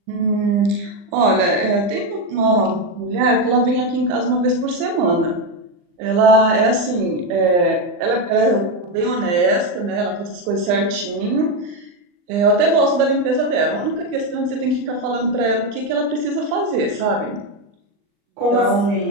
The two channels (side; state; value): left; late; 40 ms